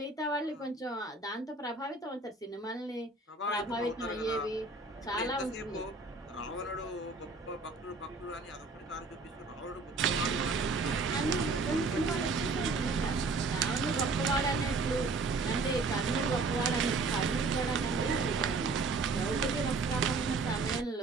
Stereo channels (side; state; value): left; quieter; 3.8 dB